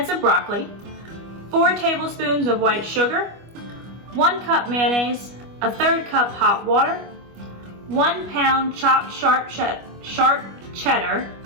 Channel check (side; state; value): left; late; 25 ms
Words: of broccoli, 4 tablespoons of white sugar, 1 cup mayonnaise, a 1/3 cup hot water, 1 pound chopped sharp cheddar,